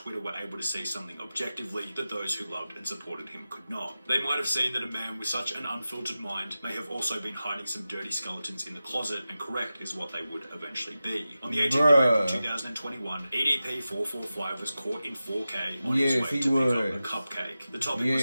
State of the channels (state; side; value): inverted; both; correlation -0.94